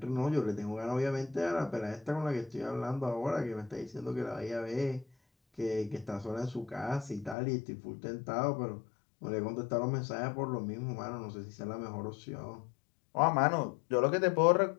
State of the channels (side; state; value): right; drops out; at 7.4 s